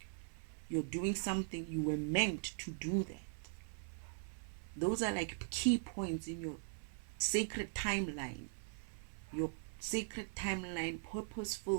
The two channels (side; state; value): left; silent; 50 dB below the other